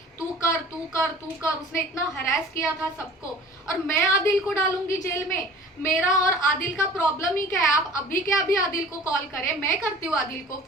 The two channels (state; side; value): normal; both; correlation 0.44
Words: तू कर तू कर तू कर। उसने इतना हरास किया था सबको, और मैं आदिल को डालूंगी जेल में? मेरा और आदिल का प्रॉब्लम ही क्या है? आप अभी के अभी आदिल को कॉल करें, मैं करती हूँ आदिल को